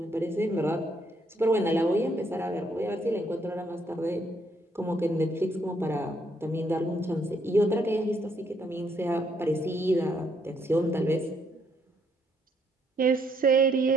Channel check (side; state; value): both; normal; correlation 0.71